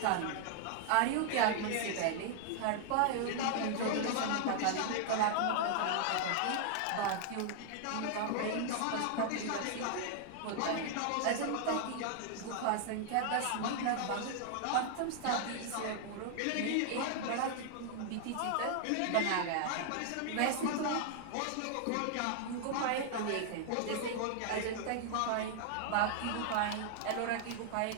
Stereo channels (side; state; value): both; different; correlation -0.01